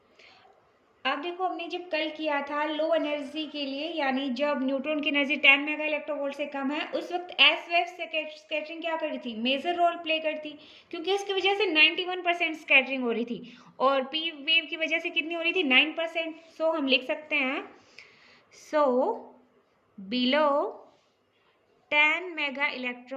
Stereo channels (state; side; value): identical; both; correlation 1.00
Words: अब देखो हमने जब कल किया था लो एनर्जी के लिए, यानी जब न्यूट्रॉन की एनर्जी 10 मेगा इलेक्ट्रोवोल्ट से कम है, उस वक्त एस वेव स्कैटरिंग क्या कर रही थी, मेजर रोल प्ले करती, क्योंकि इसकी वजह से 91% स्कैटरिंग हो रही थी और पी वेव की वजह से कितनी हो रही थी, 9%। सो हम लिख सकते हैं, so below 10 mega